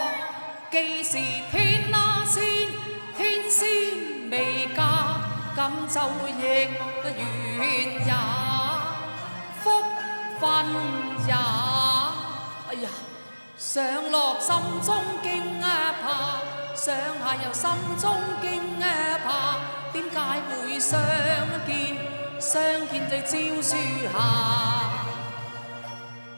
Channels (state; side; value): inverted; both; correlation -1.00